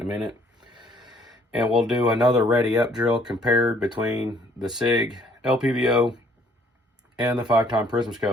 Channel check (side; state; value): both; normal; correlation 0.62